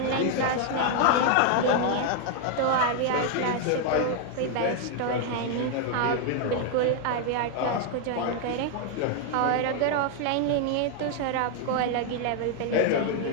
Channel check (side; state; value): both; different; correlation 0.00